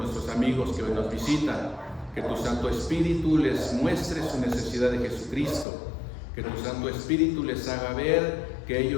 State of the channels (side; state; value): right; drops out; at 5.7 s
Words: amigos que hoy nos visitan, que tu Santo Espíritu les muestre su necesidad de Jesucristo, que tu Santo Espíritu les haga ver que